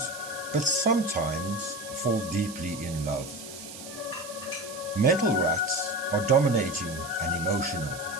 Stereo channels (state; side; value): noise; right; hiss, 13 dB below the sound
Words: but sometimes fall deeply in love. Metal rats are dominating and emotional.